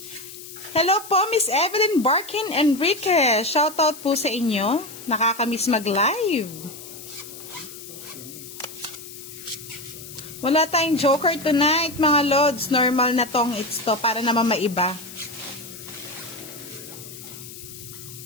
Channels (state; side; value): noise; left; hiss, 14 dB below the sound